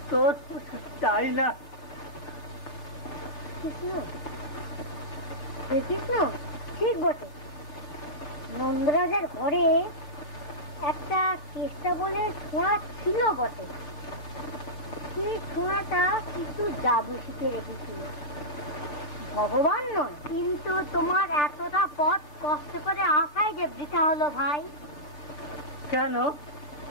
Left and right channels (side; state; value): right; late; 3.4 ms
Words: তোর চাই না। কৃষ্ণ, কৃষ্ণ, ঠিক বটে। নন্দরাজার ঘরে একটা চেষ্টা বলে ছোঁয়া ছিল বটে। সেই ছোঁয়াটা কিছু জাদু শিখে রেখেছিল। ভগবান নয়, কিন্তু তোমার এতটা পথ কষ্ট করে আসাই যে বৃথা হলো ভাই। কেন?